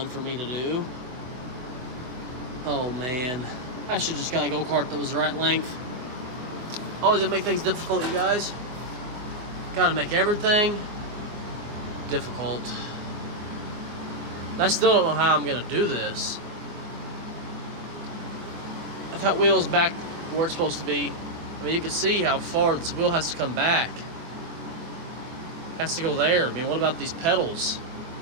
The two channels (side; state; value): left; late; 24 ms